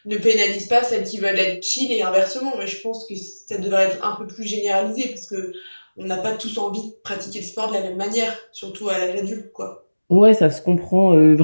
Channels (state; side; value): inverted; both; correlation -1.00